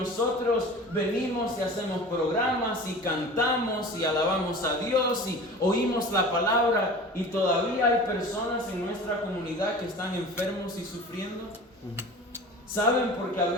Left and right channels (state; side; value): normal; both; correlation 0.38